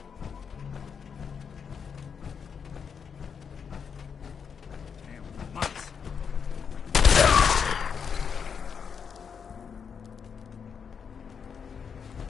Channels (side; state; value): right; quieter; 6.6 dB